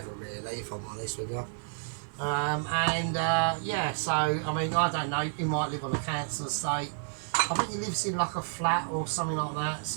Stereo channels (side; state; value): left; silent; digital silence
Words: really, if I'm honest with you. Yeah, so I mean, I don't know. He might live on a council estate. I think he lives in like a flat or something like that.